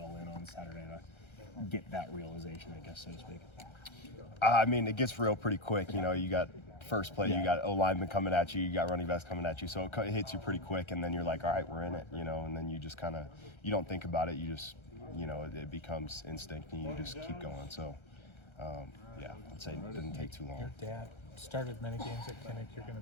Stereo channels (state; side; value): late; right; 1.3 ms